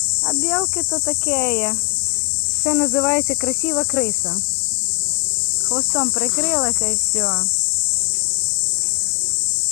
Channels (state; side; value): quieter; right; 33.0 dB